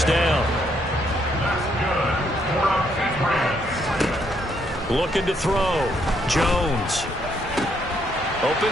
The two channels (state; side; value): normal; both; correlation 0.72